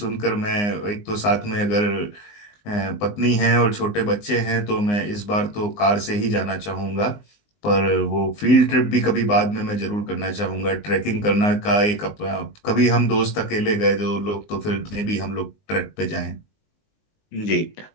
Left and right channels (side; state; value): right; late; 19 ms